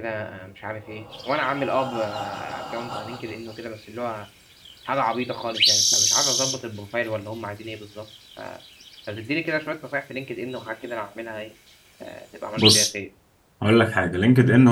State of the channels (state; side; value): identical; both; correlation 1.00